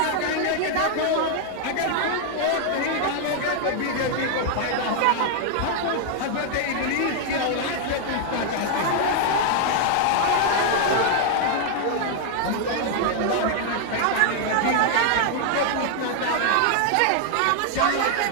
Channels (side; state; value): both; different; correlation 0.00